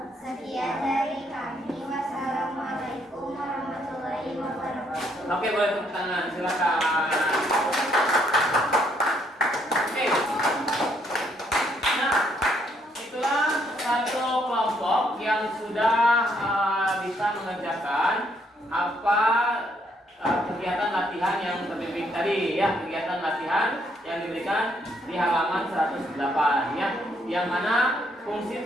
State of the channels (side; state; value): both; normal; correlation 0.71